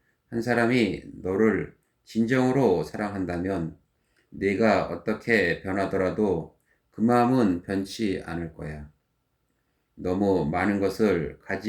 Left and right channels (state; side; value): identical; both; correlation 1.00